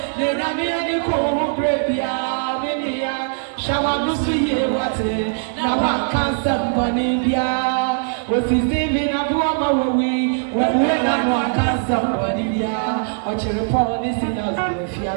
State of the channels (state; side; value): silent; left; digital silence